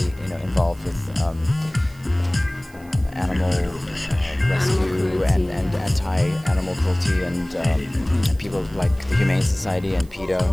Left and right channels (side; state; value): right; noise; hiss, 27 dB below the sound